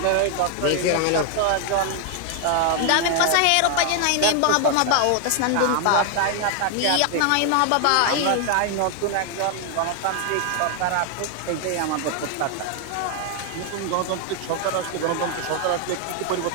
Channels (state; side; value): different; both; correlation 0.00